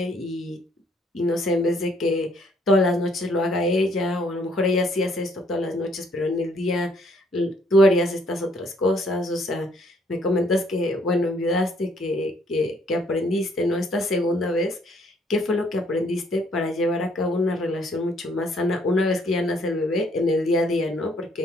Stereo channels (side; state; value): both; normal; correlation 0.66